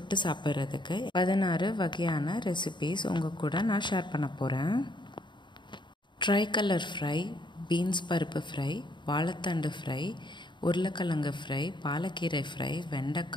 சாப்பிட்றதுக்கு 16 வகையான ரெசிபிஸ் உங்கள் கூட நான் ஷேர் பண்ண போகிறேன். ட்ரை கலர் ஃப்ரை, பீன்ஸ் பருப்பு ஃப்ரை, வாழைத்தண்டு ஃப்ரை, உருளைக்கிழங்கு ஃப்ரை, பாலக்கீரை ஃப்ரை,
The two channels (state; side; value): late; right; 0.22 ms